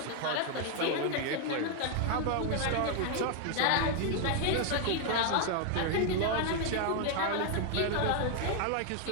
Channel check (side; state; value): both; different; correlation 0.00